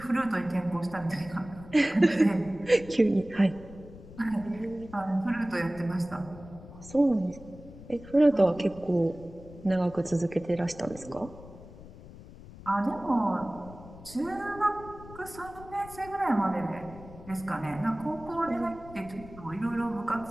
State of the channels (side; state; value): left; noise; rumble, 17 dB below the sound